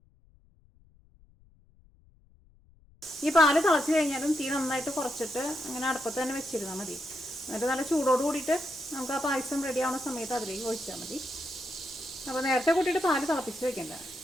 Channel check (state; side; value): noise; left; rumble, 29 dB below the sound